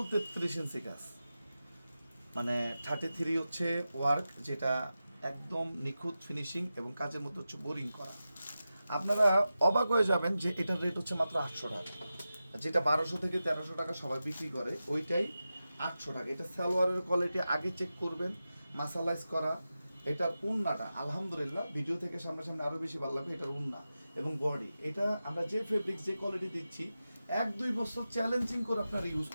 33 ইঞ্চি কাজ, মানে 33 হচ্ছে ওয়ার্ক, যেটা একদম নিখুঁত ফিনিশিং এবং কাজের মধ্যে হচ্ছে বোরিং করা। আপনারা অবাক হয়ে যাবেন যে এটার রেট হচ্ছে মাত্র 800 টাকা। যেটা 1200 থেকে 1300 টাকা সবাই বিক্রি করে, ওইটাই 800 টাকা। এটা সালোয়ারের কোয়ালিটি আগে চেক করবেন, মাসালাইজ করা। এটার উন্নাটা আলহামদুলিল্লাহ ভিডিও থেকে সামনাসামনি আরও বেশি ভালো লাগবে। এটার উন্না এবং বডি, এটা আমরা যে ফেব্রিক যে কোয়ালিটি দিচ্ছি 1-2 বছর চ্যালেঞ্জিং করে আপনারা ইউজ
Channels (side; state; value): both; inverted; correlation -0.93